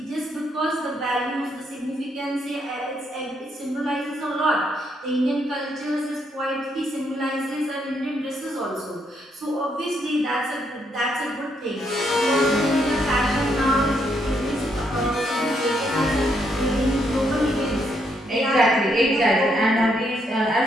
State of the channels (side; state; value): both; normal; correlation 0.75